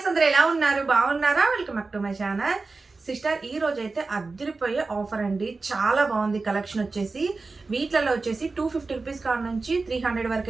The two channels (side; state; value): left; quieter; 3.9 dB